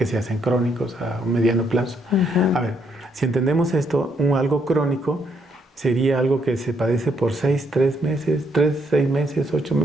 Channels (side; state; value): both; normal; correlation 0.73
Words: se hacen crónicos a un mediano plazo. Ujú. A ver, si entendemos esto, algo crónico sería algo que se padece por 6 meses, 6 meses, 8